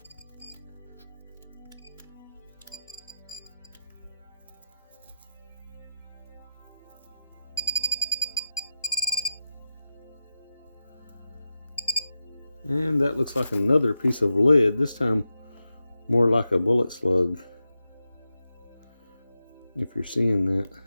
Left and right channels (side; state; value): both; inverted; correlation -0.90